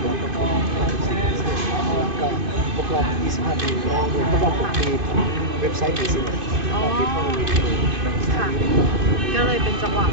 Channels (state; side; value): late; left; 2.5 ms